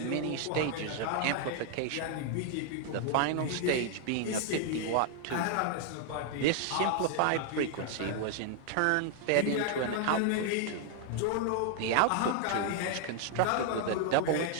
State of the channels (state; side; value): different; both; correlation 0.00